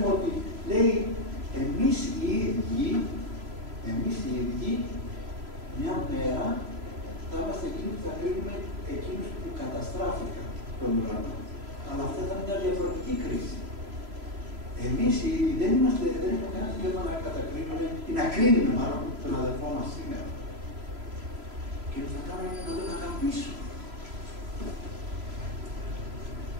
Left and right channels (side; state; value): left; late; 3.0 ms